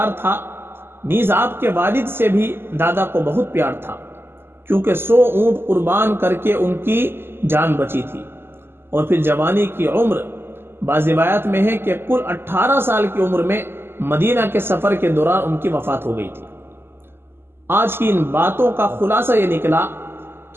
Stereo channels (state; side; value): late; left; 0.11 ms